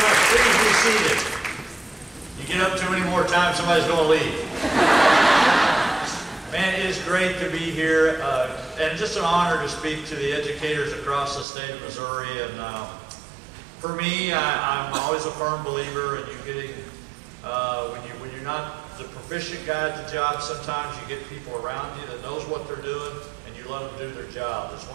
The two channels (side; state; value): left; drops out; at 11.5 s